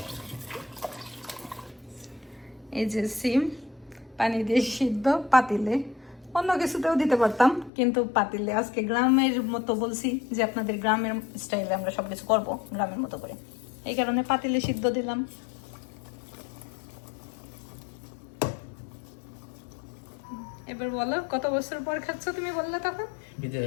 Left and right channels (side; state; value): right; drops out; at 7.7 s